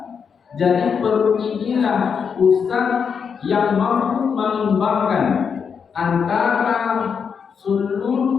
Jadi perut inilah pusat yang mampu mengembangkan antara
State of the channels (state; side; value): quieter; right; 6.5 dB